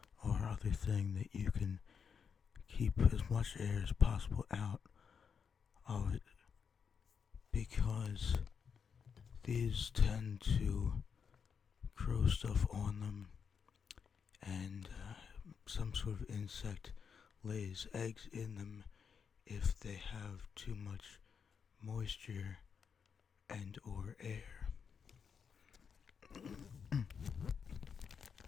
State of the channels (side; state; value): right; quieter; 6.5 dB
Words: or other thing that you can keep as much air as possible out of it, because these tend to grow stuff on them, and some sort of insect lays eggs in them if they have too much moisture and or air.